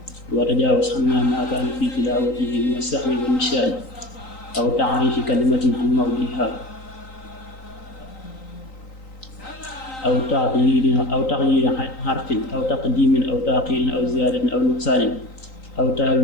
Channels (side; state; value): right; late; 3.9 ms